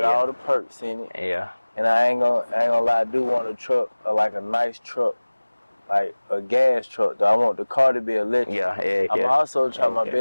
all the perks in it. Yeah. And I ain't gonna lie, I do want a truck, like a nice truck, like a gas truck. Though I want the car to be electric. Yeah. I'm also trying my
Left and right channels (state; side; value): inverted; both; correlation -1.00